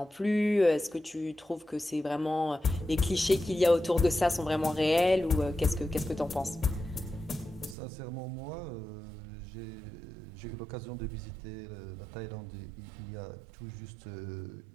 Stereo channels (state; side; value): drops out; left; at 7.8 s